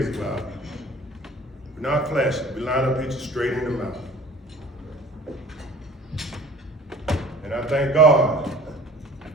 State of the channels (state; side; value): normal; both; correlation 0.47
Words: about. We're not flashing. We line up, hit you straight in the mouth. And I thank God,